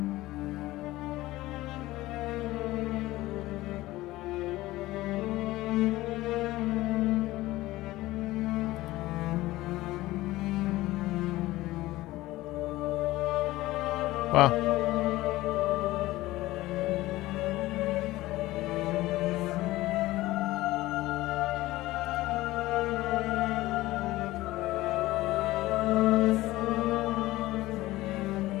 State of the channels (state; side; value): quieter; right; 17.6 dB